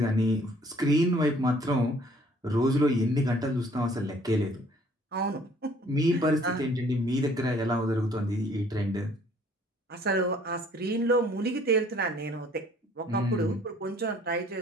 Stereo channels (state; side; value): normal; both; correlation 0.57